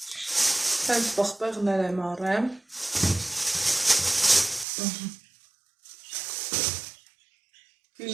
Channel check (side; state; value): left; drops out; at 4.7 s